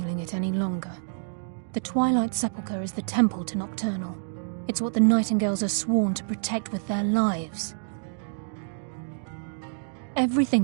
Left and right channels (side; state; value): left; silent; digital silence